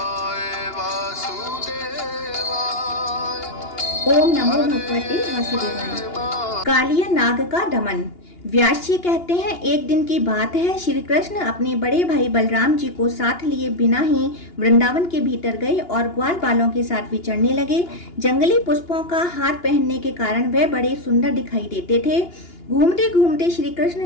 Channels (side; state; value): right; late; 2.9 ms